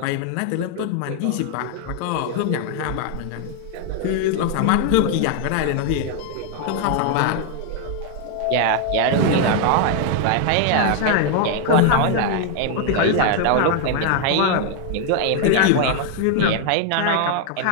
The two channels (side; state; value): both; different; correlation 0.00